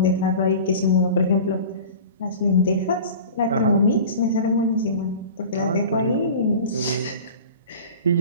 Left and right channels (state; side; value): inverted; both; correlation -0.38